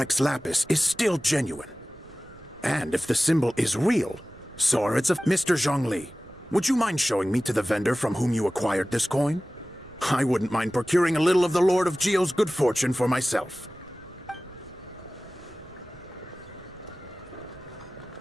Lapis is still genuine. And if the symbol is real, so are its of Mr. Zhongli. Would you mind showing me to the vendor from whom you acquired this coin? I wouldn't mind procuring a little of the Lord of Geo's good fortune for myself.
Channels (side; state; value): right; noise; rumble, 23 dB below the sound